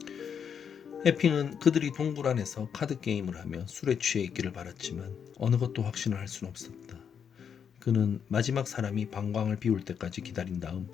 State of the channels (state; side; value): quieter; right; 7.5 dB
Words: 에핑은 그들이 동굴 안에서 카드 게임을 하며 술에 취해 있기를 바랐지만 어느 것도 확신을 할 수는 없었다. 그는 마지막 사람이 방광을 비울 때까지 기다린 다음